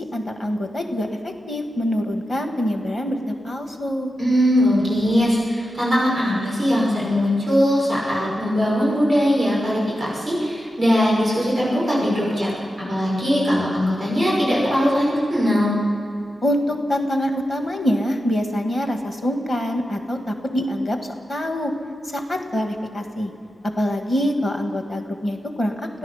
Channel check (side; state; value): both; normal; correlation 0.90